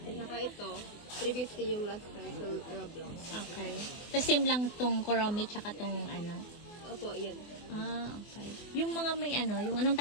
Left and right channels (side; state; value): right; late; 24 ms